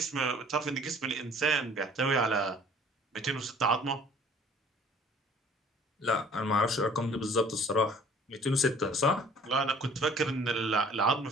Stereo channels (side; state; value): both; normal; correlation 0.52